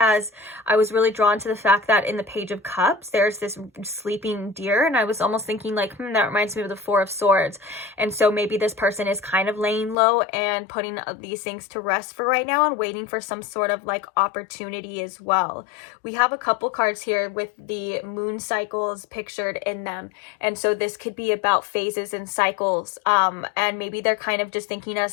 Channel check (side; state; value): right; drops out; at 10.0 s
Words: I was really drawn to the fact that in the Page of Cups, there's this sleeping deer. And I was almost thinking like, that reminds me of the Four of Swords. And so maybe this person is kind of laying low and putting these things to rest for right now, and waiting for some sort of like opportunity as well. We have a couple cards here with the moon cycles pictured in them. And so this could be about phases and cycles. And maybe they're kind of just thinking